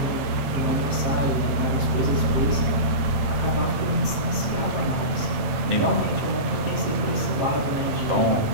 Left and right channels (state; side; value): late; left; 8.7 ms